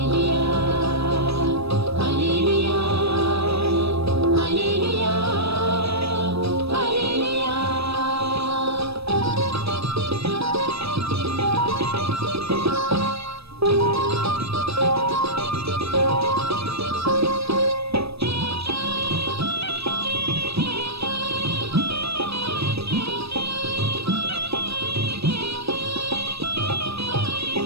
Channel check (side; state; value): left; late; 0.78 ms